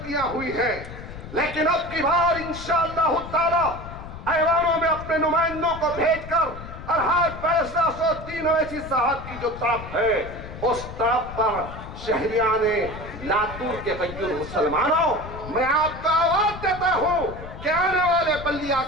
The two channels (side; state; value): left; noise; rumble, 12 dB below the sound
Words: हुई हैं, लेकिन अब की बार इंशाअल्लाह ताला ऐवानों में अपने नुमाइंदों को भेजकर अरहाद फैसला 103 ऐसी साहब की जो तरफ है, उस तरफ पर शहरियाने लातूर के गैर मुसलमानों, मैं आपको आवाज देता हूं कि आने वाले बल्दिया